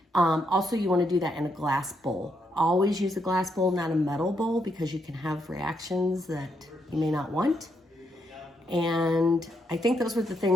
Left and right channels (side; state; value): both; normal; correlation 0.78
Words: Also, you want to do that in a glass bowl. Always use a glass bowl, not a metal bowl, because you can have reactions that you may not want. And I think those were the